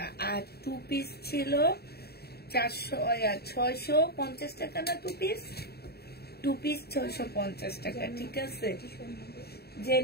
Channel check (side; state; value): right; late; 0.46 ms